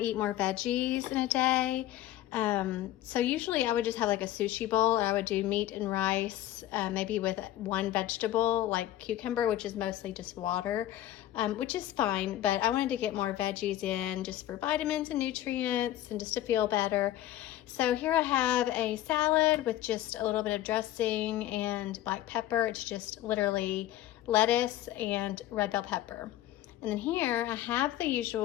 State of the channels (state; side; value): quieter; right; 13.8 dB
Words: more veggies in a day. So usually I would just have like a sushi bowl, or I would do meat and rice, maybe with one vegetable like cucumber, which is mostly just water, which is fine, but I wanted to get more veggies in just for vitamins and nutrients and just to feel better. So here I have a salad with just a little bit of dressing and black pepper. It's just literally lettuce and red bell pepper. And then here I have the